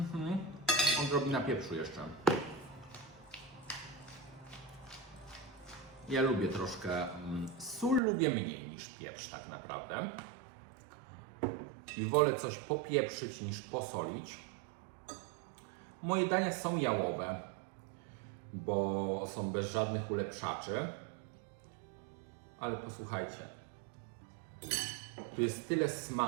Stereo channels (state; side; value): drops out; left; at 8.0 s